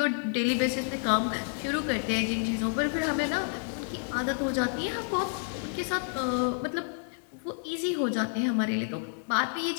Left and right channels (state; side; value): silent; right; 58 dB below the other